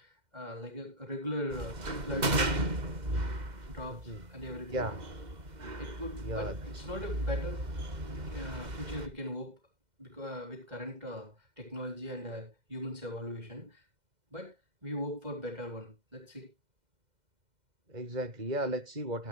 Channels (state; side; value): late; left; 2.1 ms